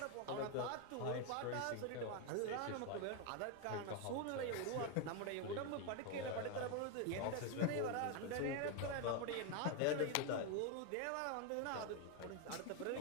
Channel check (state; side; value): different; both; correlation 0.01